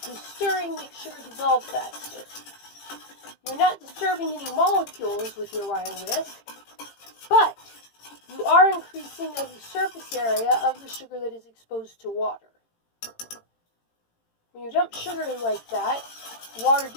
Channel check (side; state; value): right; late; 18 ms